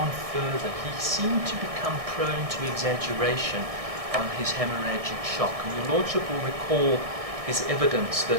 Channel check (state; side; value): late; left; 1.6 ms